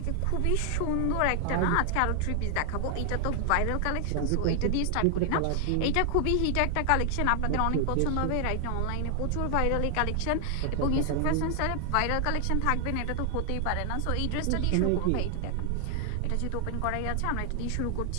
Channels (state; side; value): different; both; correlation 0.00